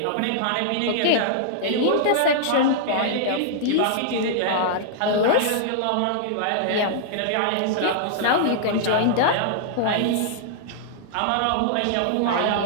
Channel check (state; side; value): different; both; correlation -0.01